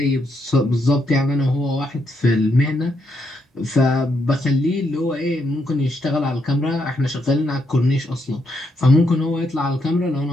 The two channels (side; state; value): both; normal; correlation 0.78